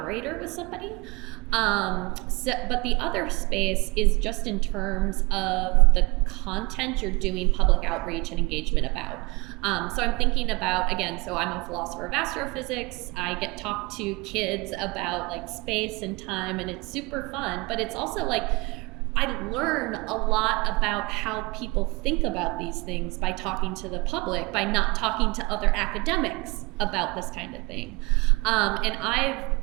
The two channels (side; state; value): left; quieter; 25.6 dB